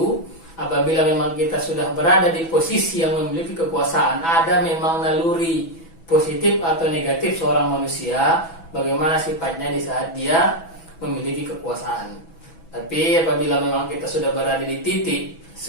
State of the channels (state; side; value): late; right; 6.1 ms